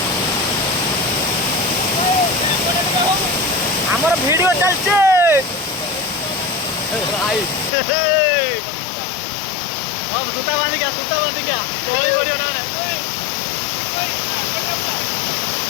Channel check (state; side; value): drops out; right; at 7.7 s